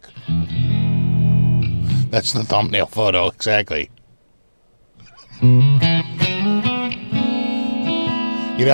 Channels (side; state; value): both; inverted; correlation -1.00